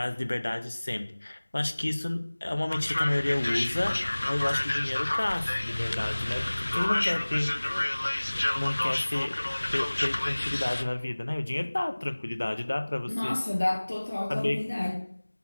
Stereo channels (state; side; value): inverted; both; correlation -1.00